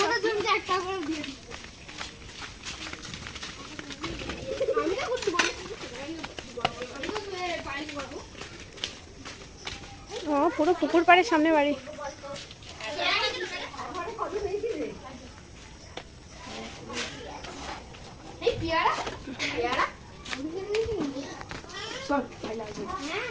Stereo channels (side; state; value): both; identical; correlation 1.00